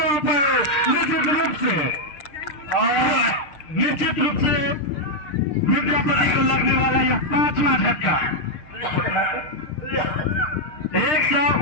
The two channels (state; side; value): late; right; 6.6 ms